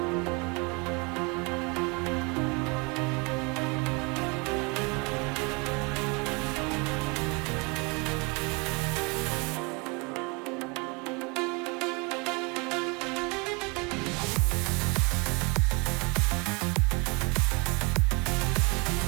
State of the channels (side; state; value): left; quieter; 30.2 dB